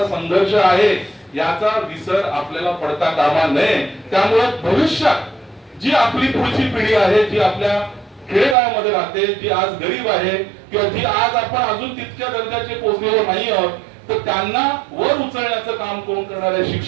संघर्ष आहे, याचा विसर आपल्याला पडता कामा नये. त्यामुळे भविष्यात जी आपली पुढची पिढी आहे, जी आपल्या खेडेगावामध्ये राहते, जी आज गरीब आहे किंवा जी आज आपण अजून तितक्या दर्जाचे पोहोचलेलो नाही आहोत, तर त्यांना वर उचलण्याचं काम कोण करणार आहे?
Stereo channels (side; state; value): left; drops out; at 8.6 s